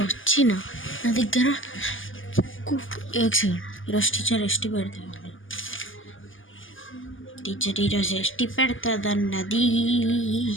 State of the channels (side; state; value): right; late; 0.58 ms